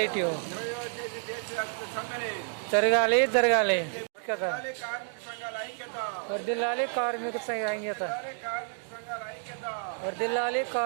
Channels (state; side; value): silent; left; 58 dB below the other